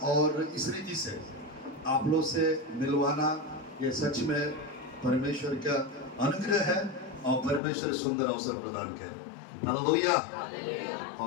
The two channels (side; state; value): right; drops out; at 7.6 s